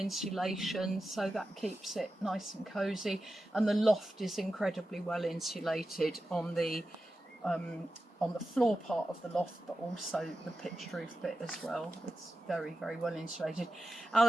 so that keeps it nice and cosy. And the loft is incredibly well insulated on the floor part of the loft, but also the pitched roof bit as well. It's very, very well insulated.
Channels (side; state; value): both; normal; correlation 0.92